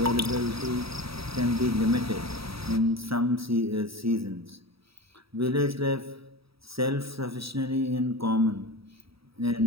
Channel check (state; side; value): late; left; 0.77 ms